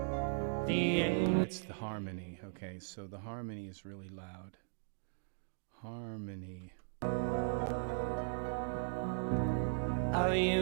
the Angel. It's the harmony. Okay, so the harmony is really loud. Harmony. Our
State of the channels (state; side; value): silent; left; digital silence